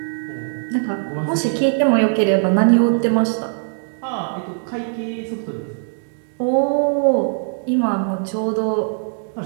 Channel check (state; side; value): silent; left; digital silence